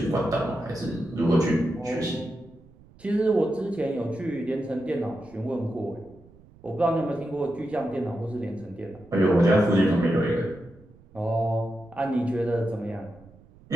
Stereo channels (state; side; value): noise; right; rumble, 25 dB below the sound